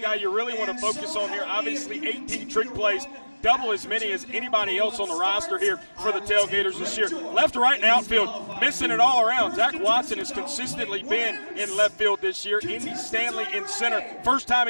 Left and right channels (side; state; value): both; inverted; correlation -1.00